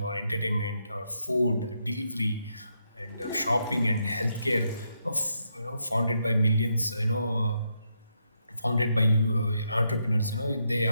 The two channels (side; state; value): both; inverted; correlation -0.80